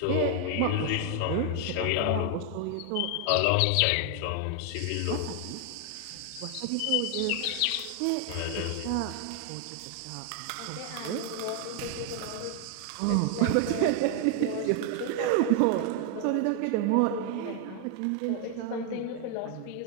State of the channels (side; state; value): both; different; correlation 0.00